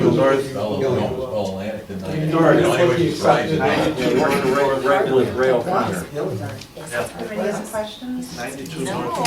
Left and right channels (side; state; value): both; identical; correlation 1.00